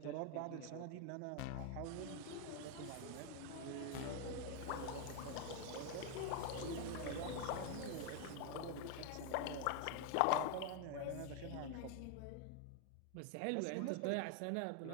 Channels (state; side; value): different; both; correlation 0.01